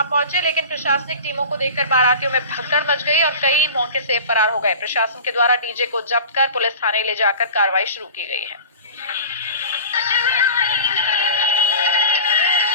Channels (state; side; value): inverted; both; correlation -0.36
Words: पहुंचे, लेकिन प्रशासनिक टीमों को देखकर बारातियों में भगदड़ मच गई और कई मौके से फरार हो गए। प्रशासन के द्वारा डीजे को जब्त कर पुलिस थाने ले जाकर कार्रवाई शुरू की गई है।